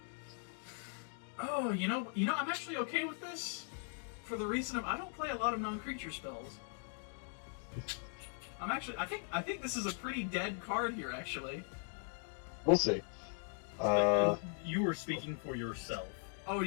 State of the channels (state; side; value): silent; right; 52 dB below the other